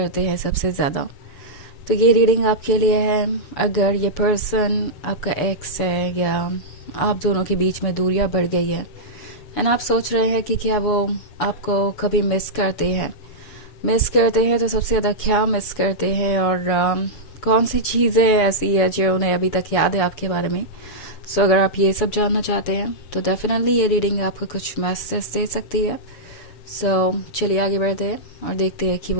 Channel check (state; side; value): late; right; 7.0 ms